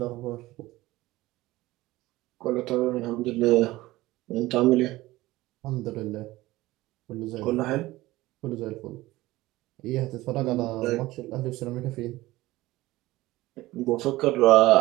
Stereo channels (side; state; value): left; quieter; 18.2 dB